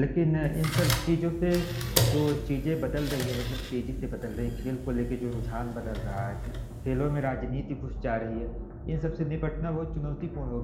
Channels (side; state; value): both; identical; correlation 1.00